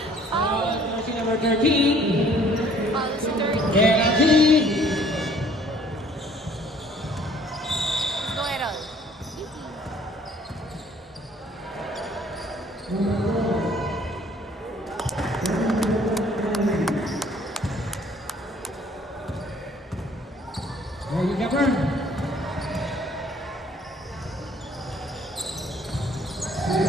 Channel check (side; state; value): both; normal; correlation 0.57